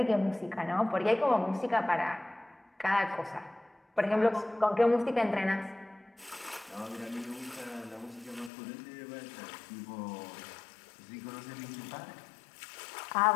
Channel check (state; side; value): drops out; right; at 8.5 s